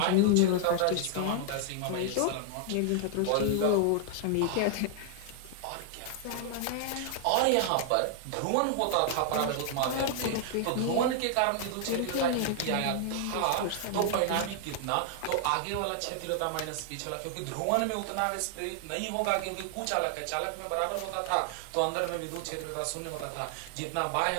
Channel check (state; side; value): different; both; correlation 0.00